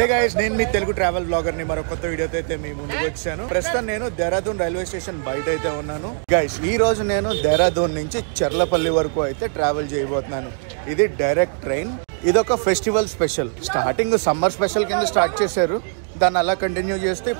guys, నేను మీ Telugu travel blogger ని మరో కొత్త వీడియోతో అయితే మీ ముందుకు వచ్చాను. ప్రస్తుతం నేను దేహరాదూన్ రైల్వే స్టేషన్ బయట అయితే ఉన్నాను. గైస్, ఈ రోజు నేను దేహరాదూన్ నుంచి చర్లపల్లి వరకు అయితే ట్రావెల్ చేయబోతున్నాను. ఇది డైరెక్ట్ ట్రైన్. ఇదొక festival special. Starting summer special కింద స్టార్ట్ చేశారు, దాన్ని అలా కంటిన్యూ చేస్తే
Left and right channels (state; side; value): silent; left; 60 dB below the other